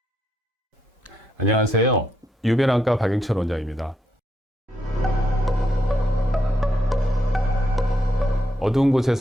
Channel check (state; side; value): normal; both; correlation 0.79